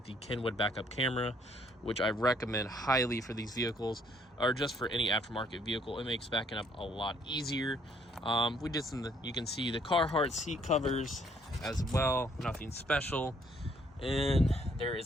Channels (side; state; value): both; normal; correlation 0.65